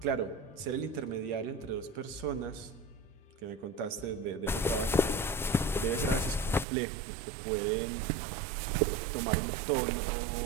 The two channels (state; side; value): drops out; left; at 6.7 s